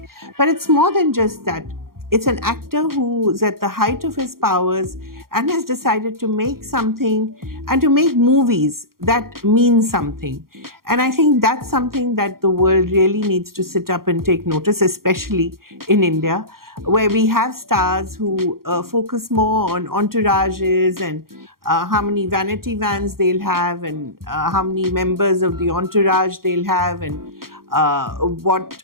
but it's more than just that. It's an actor who's at the height of his powers and has decided to make something and to make movies that mean something. And I think that's something that the world really needs to sit up and take notice, especially in India, where we have stars who focus more on entourages and how many vanity vans they'll have and how many members of the entourage they'll have and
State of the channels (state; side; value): late; left; 0.92 ms